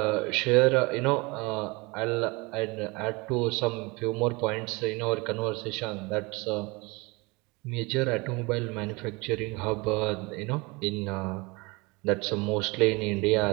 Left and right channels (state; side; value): quieter; left; 26.1 dB